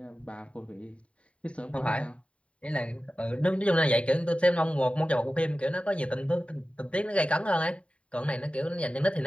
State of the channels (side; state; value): right; late; 0.062 ms